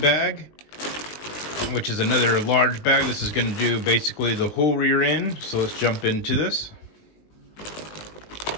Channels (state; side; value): late; right; 20 ms